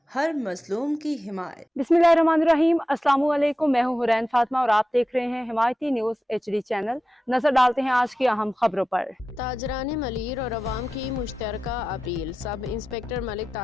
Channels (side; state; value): both; normal; correlation 0.93